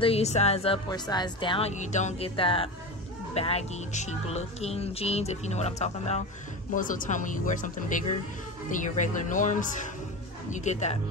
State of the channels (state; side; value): normal; both; correlation 0.25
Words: you size up or size down, you don't get that baggy, cheap looking jeans, if you know what I'm talking about. Most of the time when you wear something bigger than your regular norms, you get that